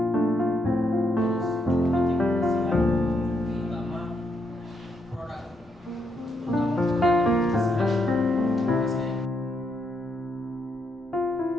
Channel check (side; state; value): both; normal; correlation 0.78